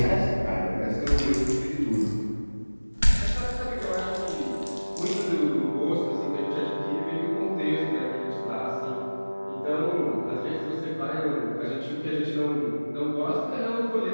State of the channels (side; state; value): both; inverted; correlation -1.00